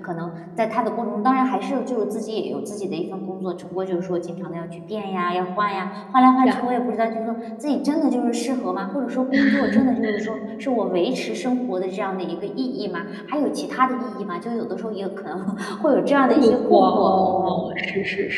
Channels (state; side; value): identical; both; correlation 1.00